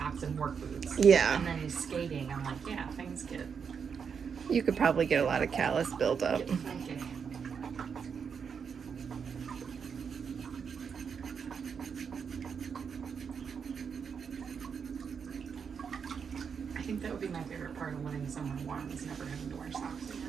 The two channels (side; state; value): left; quieter; 6.5 dB